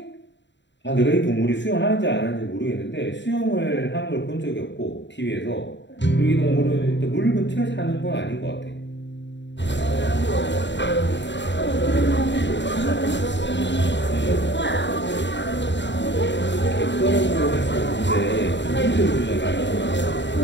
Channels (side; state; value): right; late; 0.52 ms